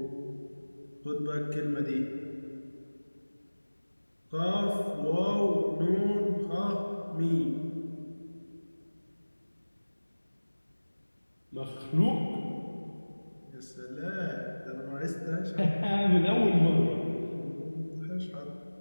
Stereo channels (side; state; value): both; inverted; correlation -1.00